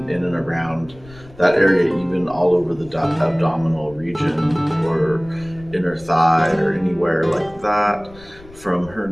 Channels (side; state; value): left; noise; rumble, 21 dB below the sound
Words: in and around that area, even all over the abdominal region or inner thigh or anywhere like that from